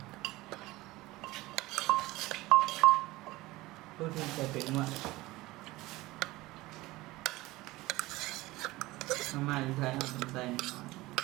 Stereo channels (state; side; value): quieter; left; 19.5 dB